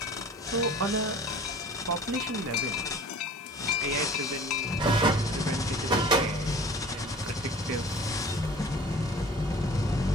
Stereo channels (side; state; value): both; normal; correlation 0.45